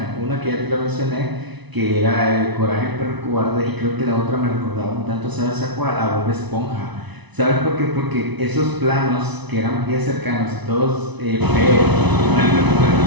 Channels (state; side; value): late; left; 1.0 ms